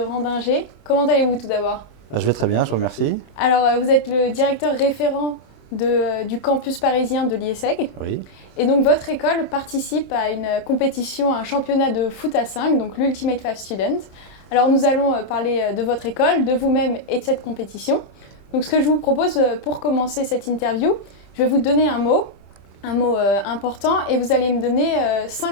Comment allez-vous tout d'abord? Je vais très bien, je vous remercie. Alors vous êtes le directeur référent du campus parisien de l'IESEG. Oui, Et donc votre école participe à une compétition, à un championnat de foot à 5, donc l'Ultimate 5 Student. Alors nous allons parler de votre école, de vous-même et de cette compétition. Donc ce que je vous propose pour commencer cette interview, je vais vous donner un mot important, et vous allez me donner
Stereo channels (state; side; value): late; right; 27 ms